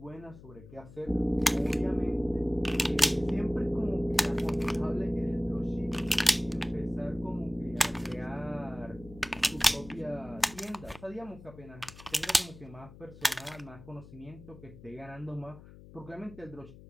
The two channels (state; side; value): noise; left; hum, 18 dB below the sound